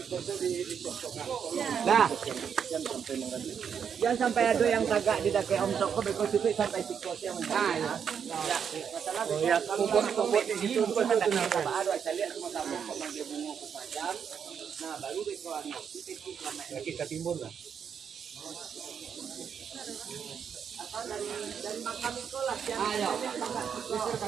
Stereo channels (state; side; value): quieter; left; 7.4 dB